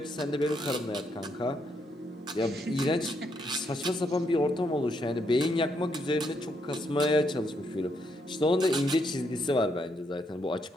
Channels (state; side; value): normal; both; correlation 0.76